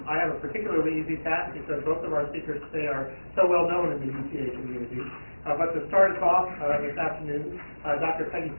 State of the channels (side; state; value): both; inverted; correlation -1.00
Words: have a particularly easy task because both of our speakers today are so well known in the UTA community. But to start us off this afternoon, Dr. Peggy